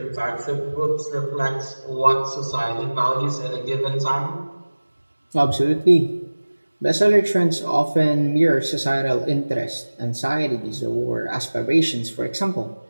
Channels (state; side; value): inverted; both; correlation -1.00